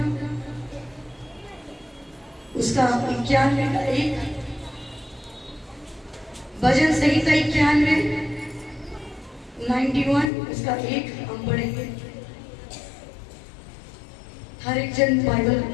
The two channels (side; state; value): right; drops out; at 10.3 s